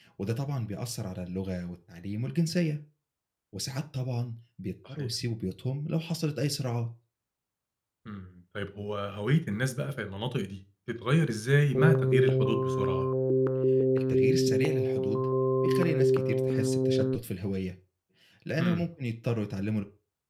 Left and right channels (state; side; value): identical; both; correlation 1.00